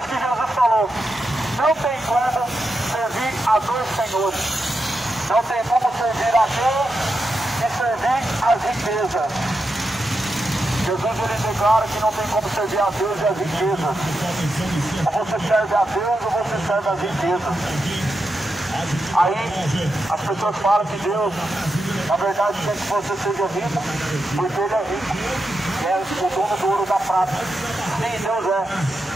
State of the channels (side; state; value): both; normal; correlation 0.87